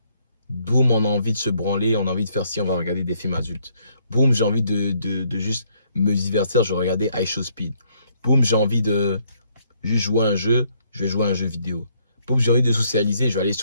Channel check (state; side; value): inverted; both; correlation -0.69